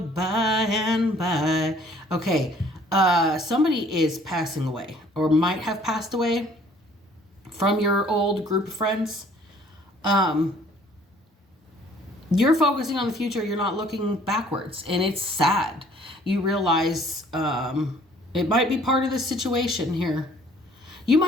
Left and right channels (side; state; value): both; normal; correlation 0.57